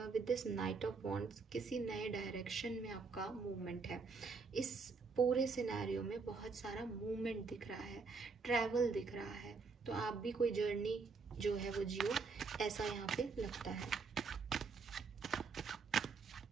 with this night of wands किसी नए डायरेक्शन में आपका मूवमेंट है। इस पूरे सिनेरियो में बहुत सारा मूवमेंट दिख रहा है, ट्रैवल दिख रहा है, तो आप भी कोई जर्नी जो है वो जियो, ऐसा यहाँ पे लगता है।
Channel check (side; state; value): left; quieter; 4.6 dB